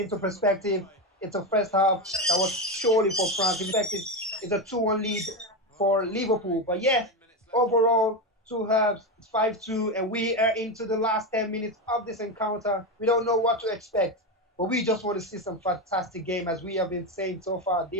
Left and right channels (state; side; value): normal; both; correlation 0.14